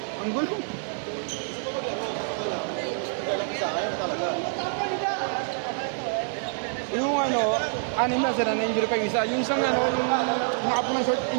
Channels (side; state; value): left; silent; digital silence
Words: ang gulo. Yung anim na sila na injury pa yung isa. Yung isang yung nakapo ng short